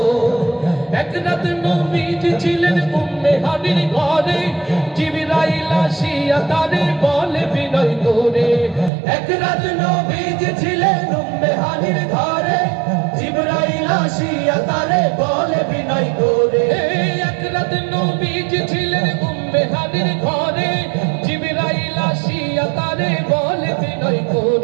এক রাত নবীজি ছিলেন উম্মে হানির ঘরে, জিবরাইল আসিয়া তারে বলে বিনয় করে। এক রাত নবীজি ছিলেন উম্মে হানির ঘরে, জিবরাইল আসিয়া তারে বলে বিনয় করে। এক রাত নবীজি ছিলেন উম্মে হানির ঘরে, জিবরাইল আসিয়া তারে বলে বিনয়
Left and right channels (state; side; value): drops out; left; at 8.9 s